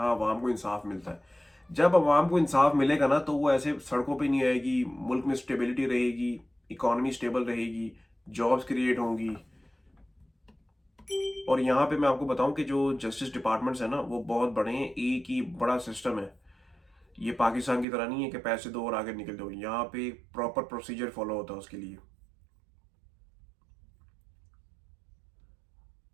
अवाम को इंसाफ मिलता है। जब अवाम को इंसाफ मिलेगा ना, तो वो ऐसे सड़कों पे नहीं आएगी, मुल्क में स्टेबिलिटी रहेगी, इकोनॉमी स्टेबल रहेगी, जॉब्स क्रिएट होंगी। और यहाँ पे मैं आपको बताऊं कि जो जस्टिस डिपार्टमेंट्स है ना, वो बहुत बड़े हैं, एक ही बड़ा सिस्टम है। ये पाकिस्तान की तरह नहीं है कि पैसे दो और आगे निकल दो। यहाँ पे प्रॉपर प्रोसीजर फॉलो होता है उसके लिए।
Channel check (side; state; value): left; drops out; at 17.9 s